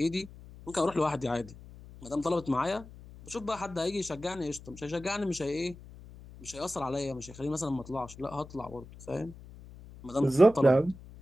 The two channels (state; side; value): noise; left; hum, 18 dB below the sound